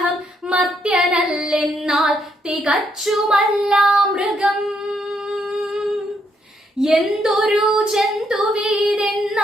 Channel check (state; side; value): normal; both; correlation 0.75